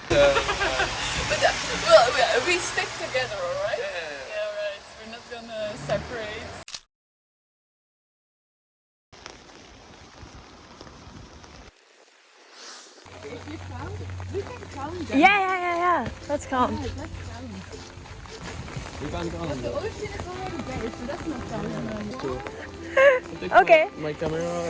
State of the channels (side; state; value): both; identical; correlation 1.00